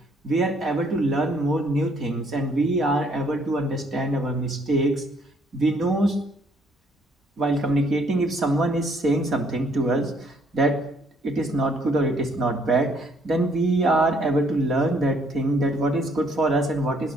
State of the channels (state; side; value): normal; both; correlation 0.66